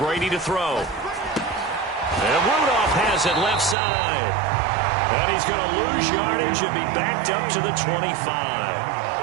to throw. And Rudolph has it left side. And he's going to lose yardage and be backed up to the 25.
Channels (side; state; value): left; drops out; at 3.8 s